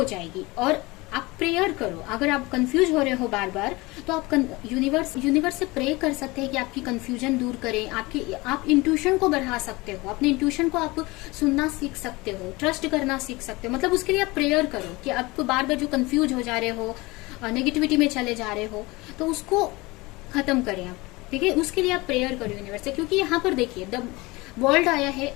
जाएगी। और आप प्रेयर करो। अगर आप कंफ्यूज हो रहे हो बार बार, तो आप यूनिवर्स से प्रे कर सकते हैं कि आपकी कंफ्यूजन दूर करें। आप इंट्यूशन को बढ़ा सकते हो, अपने इंट्यूशन को आप सुनना सीख सकते हो, ट्रस्ट करना सीख सकते हो। मतलब उसके लिए आप प्रेयर करो कि आपको बार बार जो कंफ्यूज हो जा रहे हो, नेगेटिविटी में चले जा रहे हो, तो उसको खत्म करें आप। ठीक है, उसके लिए आप प्रेयर करो यूनिवर्स से। क्योंकि यहाँ पर देखिए द वर्ल्ड आया है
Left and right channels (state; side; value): quieter; right; 22.8 dB